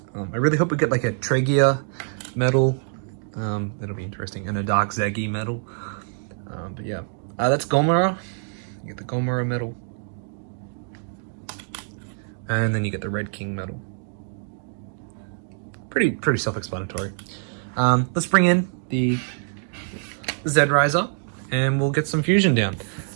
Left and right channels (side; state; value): left; silent; 62 dB below the other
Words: I really hope we get like a Tregia medal. That'll be interesting, and a Dark Zagi medal. But yeah, that's Gomora. You get the Gomora medal, and then you get the Red King medal. Pretty self-explanatory. Let's bring in the Z-Riser, and we'll get some fusion down.